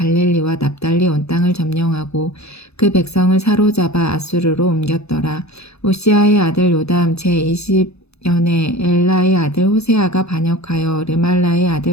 납달리 온 땅을 점령하고 그 백성을 사로잡아 아수르로 옮겼더라. 우시아의 아들 요담 제20년에 엘라의 아들 호세아가 반역하여 르말라의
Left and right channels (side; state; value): right; late; 0.79 ms